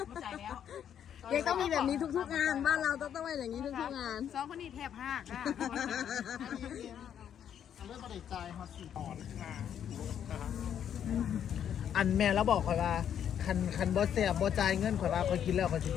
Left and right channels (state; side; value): quieter; right; 9.2 dB